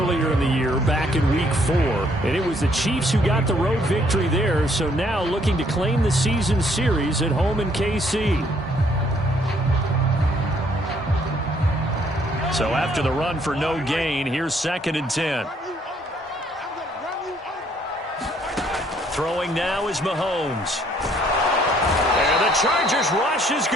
in the year, back in Week 4. And it was the Chiefs who got the road victory there, so now looking to claim the season series at home in KC. So after the run for no gain, here's 2nd and 10. Throwing now is Mahomes. And the Chargers rush is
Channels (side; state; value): both; normal; correlation 0.66